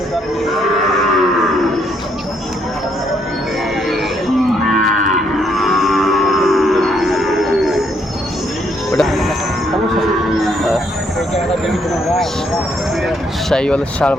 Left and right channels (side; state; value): both; normal; correlation 0.72